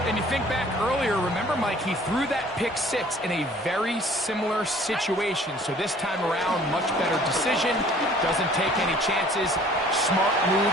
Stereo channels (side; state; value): both; normal; correlation 0.53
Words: And you think back earlier, remember, Mike, he threw that pick 6 in a very similar situation. So this time around, much better decision. Doesn't take any chances. Smart move